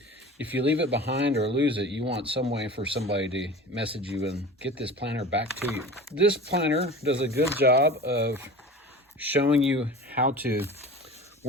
if you leave it behind or lose it, you want some way for somebody to message you and get this planner back to you. This planner does a good job of showing you how to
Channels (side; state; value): both; normal; correlation 0.36